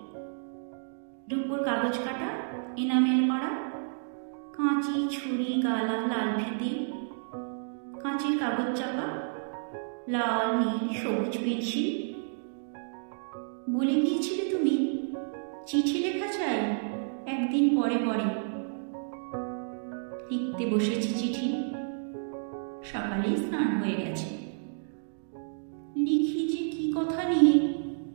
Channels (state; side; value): silent; left; digital silence